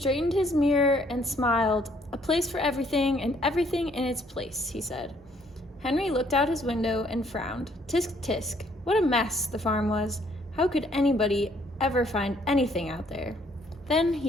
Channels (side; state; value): both; normal; correlation 0.65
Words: his mirror and smiled. "A place for everything and everything in its place," he said. Henry looked out his window and frowned. Tisk, tisk. What a mess the farm was. How could anybody ever find anything out there? Then